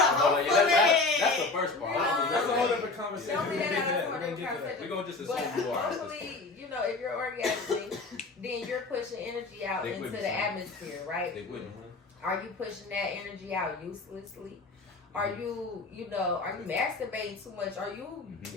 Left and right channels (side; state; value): right; quieter; 3.7 dB